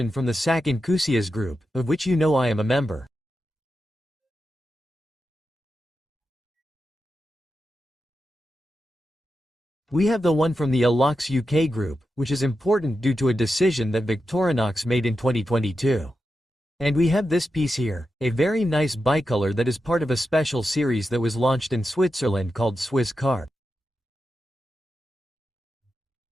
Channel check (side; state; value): both; normal; correlation 0.89